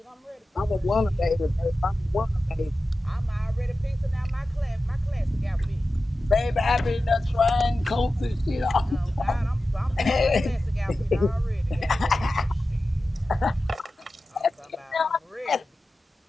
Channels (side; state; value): both; normal; correlation 0.93